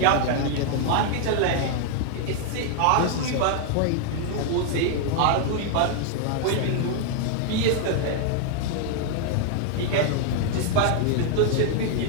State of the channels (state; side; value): different; both; correlation 0.00